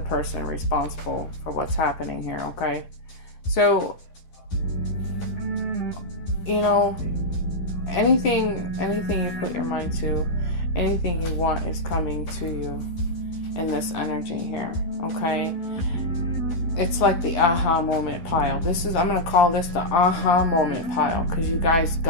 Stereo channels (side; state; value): right; late; 11 ms